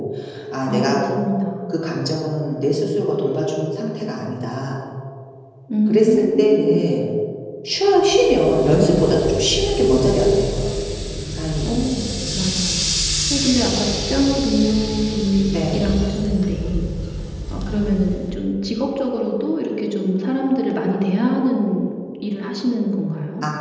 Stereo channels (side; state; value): both; identical; correlation 1.00